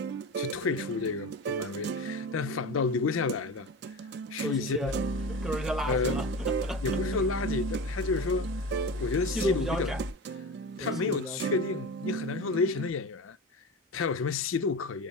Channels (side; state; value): both; normal; correlation 0.27